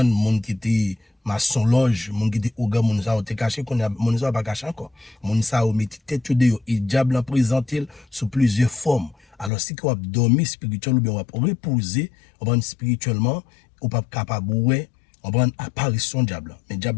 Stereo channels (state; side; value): drops out; right; at 9.5 s